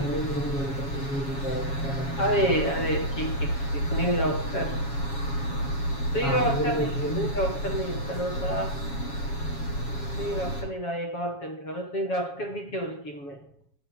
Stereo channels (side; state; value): right; late; 7.2 ms